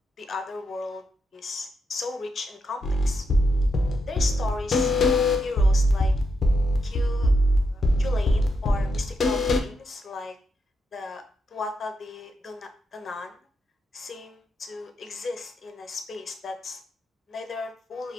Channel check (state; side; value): normal; both; correlation 0.82